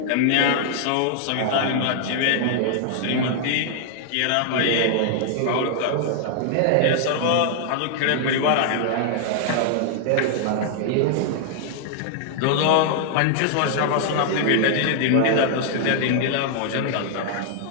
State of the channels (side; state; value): both; different; correlation -0.01